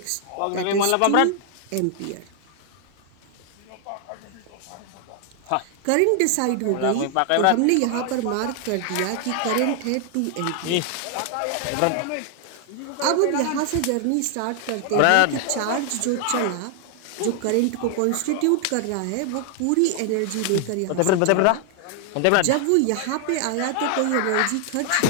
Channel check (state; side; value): different; both; correlation 0.00